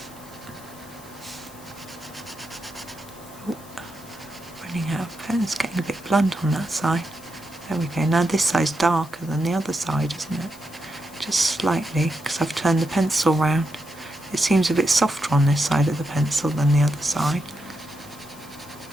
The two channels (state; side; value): noise; left; hiss, 21 dB below the sound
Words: Running out of pen, it's getting a bit blunt on that side. There we go. Now this side's darker than the other side, isn't it? Just slightly, because I've turned the pencil round. It seems a bit softer on this side of the pencil than the other side.